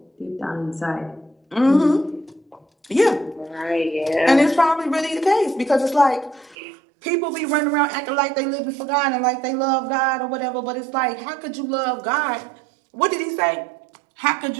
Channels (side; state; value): left; drops out; at 6.6 s